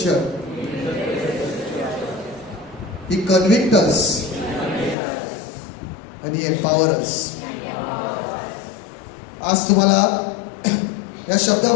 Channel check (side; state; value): right; drops out; at 5.0 s